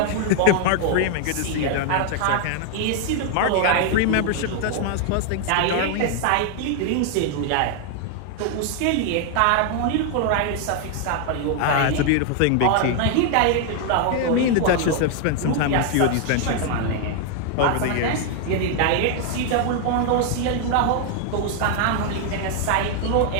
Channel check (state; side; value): different; both; correlation 0.00